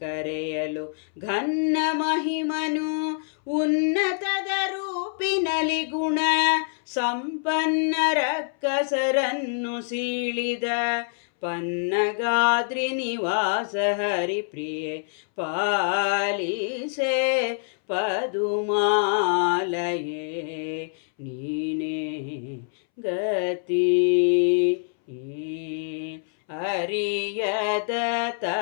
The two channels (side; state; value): right; silent; 61 dB below the other